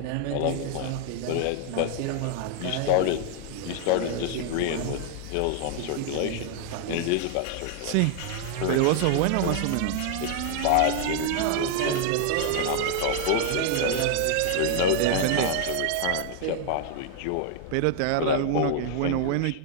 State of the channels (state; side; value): different; both; correlation 0.00